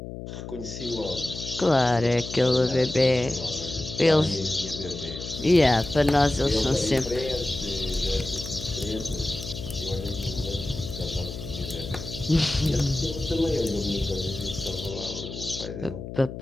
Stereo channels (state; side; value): noise; left; hum, 9 dB below the sound